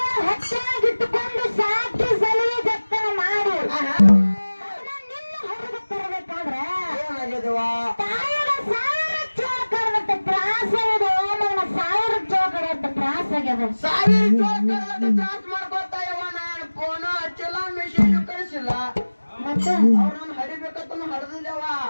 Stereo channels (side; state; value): both; inverted; correlation -1.00